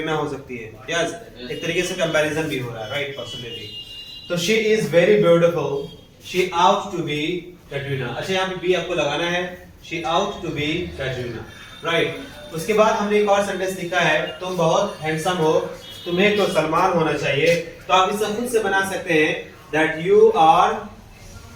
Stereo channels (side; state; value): both; identical; correlation 1.00